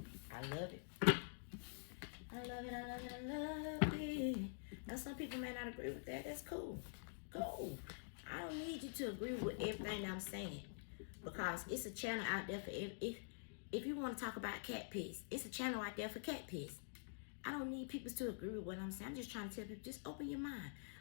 I love it. I love it, I love it, I love it. Now some people may not agree with that. That's cool. Cool. I don't need you to agree with everything I'm saying. Because it's a channel out there for if you want to talk about cat piss, it's a channel out there for cat piss. I don't need people to agree with what I'm saying. I'm just trying to tell people, just open your mind.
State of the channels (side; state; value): right; silent; digital silence